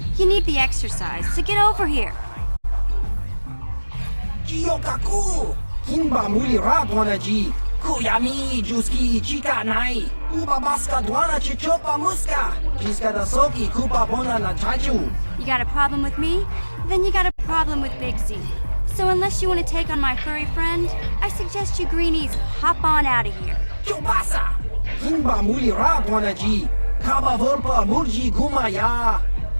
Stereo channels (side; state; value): both; inverted; correlation -1.00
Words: you need the exercise, so get over here. Jiyokaku, Kimba Mulira Dwanaji, Kuyami, Juski, Chika Nai, Uba Baska Dwana Chichopa Muska, Jiska da Soki, Kupa Bona na Chachu. You got a problem with me? Then you got a problem with Big Z. So unless you want to take on my furry friend, I suggest you greenies hop on out of here. Chubasa, Kimba Mulira Dwanaji, Kaba Volpa Murji Gumaya.